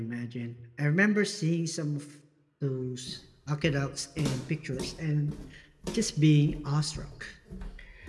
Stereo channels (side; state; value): both; identical; correlation 1.00